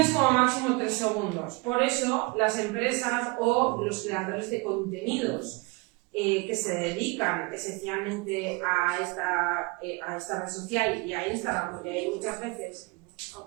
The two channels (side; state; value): left; quieter; 27.7 dB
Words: como máximo 3 segundos. Por eso las empresas o los creadores de contenidos que se dedican esencialmente a esta red social y a Instagram, porque hay muchas